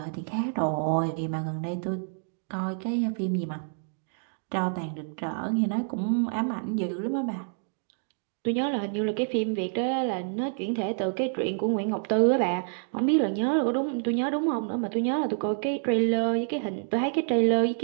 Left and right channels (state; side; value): silent; left; digital silence